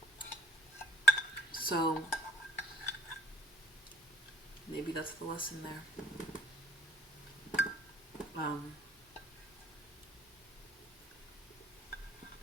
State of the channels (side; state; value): both; normal; correlation 0.64